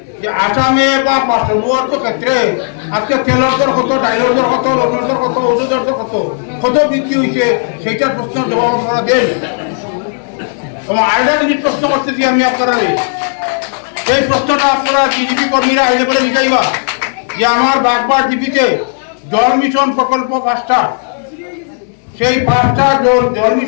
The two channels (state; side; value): silent; right; 67 dB below the other